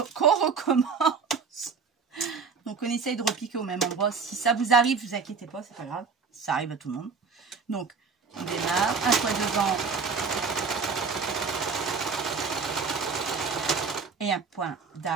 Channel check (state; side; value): quieter; left; 5.3 dB